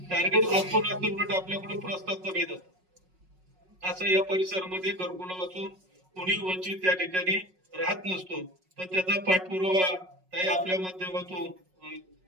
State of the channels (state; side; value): late; left; 5.4 ms